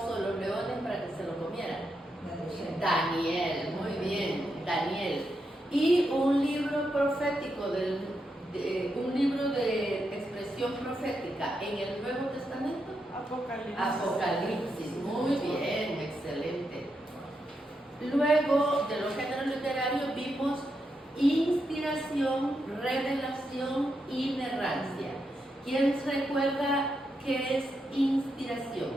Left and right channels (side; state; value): both; normal; correlation 0.84